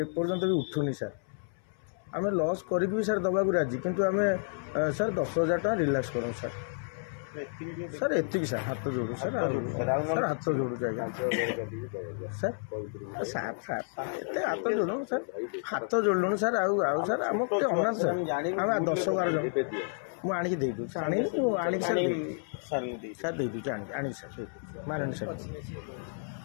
ଏପର୍ଯ୍ୟନ୍ତ ବି ଉଠୁନି ସାର୍ ଆମେ ଲସ୍ କରିକି ବି ସାର୍ ଦେବାକୁ ରାଜି କିନ୍ତୁ ଆମେ ସାର୍ 10,000 ଟଙ୍କା ରିଲାକ୍ସ କରୁ ସାର୍ ସାର୍ ଏତିକି ସାର୍ ହାତ ଯୋଡ଼ୁ ସାର୍ ସାର୍ ହାତ ଯୋଡ଼ୁଛୁ ଆଜ୍ଞା ସାର୍ ଏତେ ହାତ ଯୋଡ଼ୁନୁ ସାର୍ ହାତ ଯୋଡ଼ିଲୁଣୁ ସାର୍ ଆଉ ସାର୍ ଆମ ଟିକେ ଅନାଥ ସାର୍ ଆମେ 10-12 ଜଣ ମୁଁ ଆଣିକି ଦେଇଦେଉଛି ଆଣିକି ସାର୍ ଦେଇଦେଉଛି ଆଣିକି ସାର୍ ମାରାଣ୍ଡି ସାର୍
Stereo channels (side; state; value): right; silent; 57 dB below the other